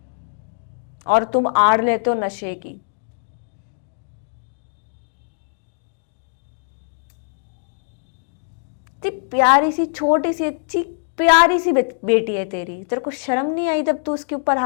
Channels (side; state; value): right; silent; digital silence